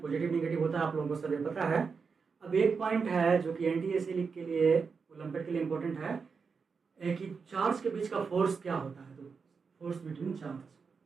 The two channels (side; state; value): left; quieter; 5.3 dB